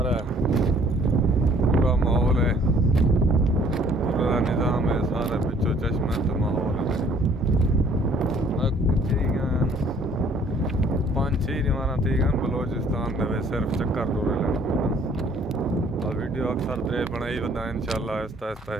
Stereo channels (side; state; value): both; normal; correlation 0.58